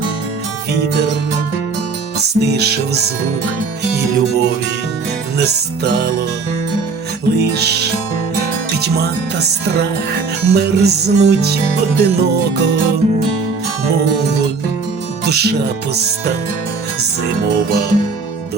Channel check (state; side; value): quieter; left; 4.6 dB